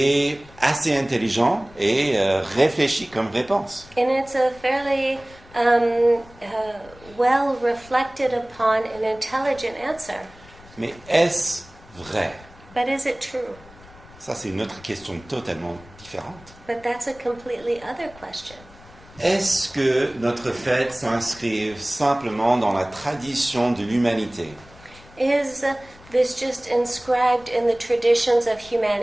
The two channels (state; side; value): noise; left; rumble, 23 dB below the sound